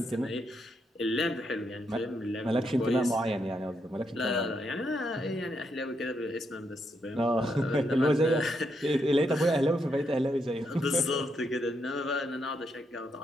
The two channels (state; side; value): normal; both; correlation 0.79